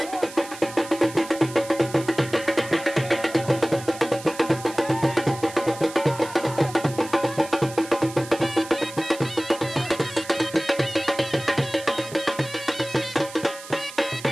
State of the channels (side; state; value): right; noise; hiss, 15 dB below the sound